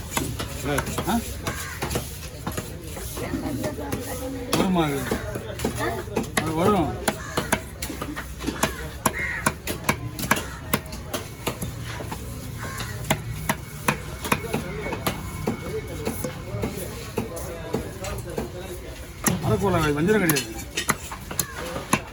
வருமா? அது வரும். அரைக்கோளா வஞ்சிரம் கிடையாது.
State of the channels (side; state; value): both; identical; correlation 1.00